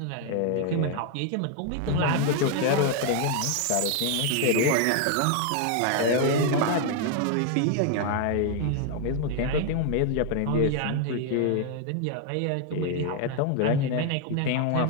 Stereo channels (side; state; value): both; different; correlation 0.00